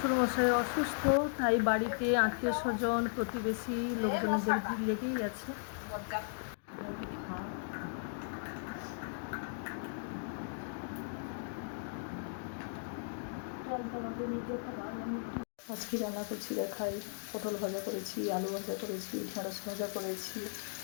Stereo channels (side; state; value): right; silent; digital silence